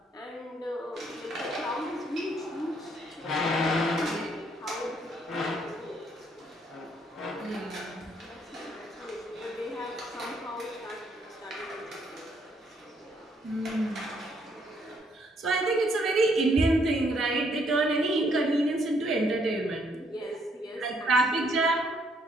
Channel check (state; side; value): normal; both; correlation 0.69